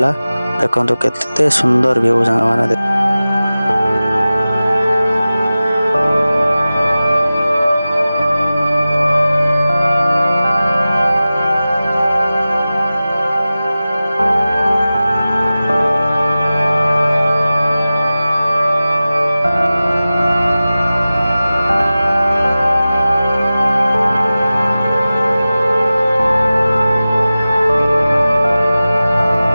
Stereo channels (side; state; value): both; inverted; correlation -0.96